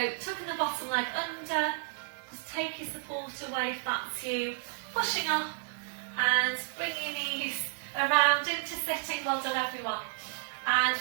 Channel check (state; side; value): silent; left; digital silence